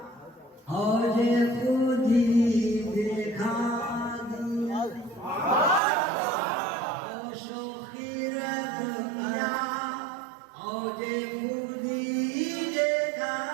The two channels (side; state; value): left; drops out; at 5.8 s